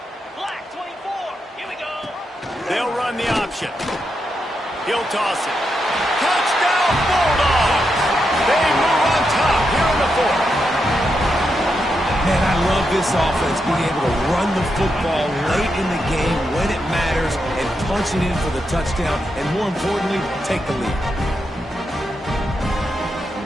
They'll run the option. He'll toss it. Touchdown, Bulldogs! They move on top here in the fourth. Man, I love this offense being able to run the football late in the game when it matters and punching in for the touchdown and, more importantly, take the lead.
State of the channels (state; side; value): normal; both; correlation 0.84